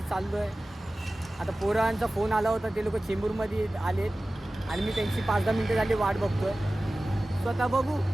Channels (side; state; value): both; normal; correlation 0.96